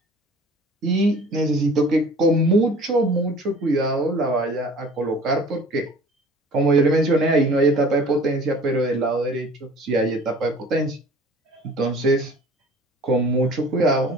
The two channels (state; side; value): normal; both; correlation 0.47